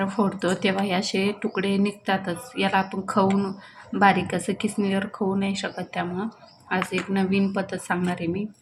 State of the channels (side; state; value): both; identical; correlation 1.00